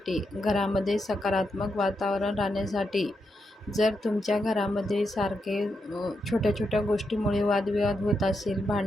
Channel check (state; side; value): normal; both; correlation 0.84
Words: घरामध्ये सकारात्मक वातावरण राहण्यासाठी, जर तुमच्या घरामध्ये सारखे छोट्या छोट्या गोष्टीमुळे वादविवाद होत असेल,